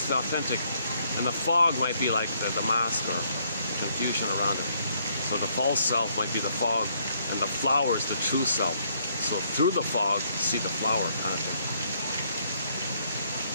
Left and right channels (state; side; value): inverted; both; correlation -0.70